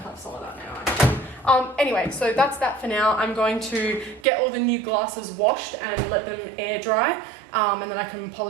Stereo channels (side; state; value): left; drops out; at 4.2 s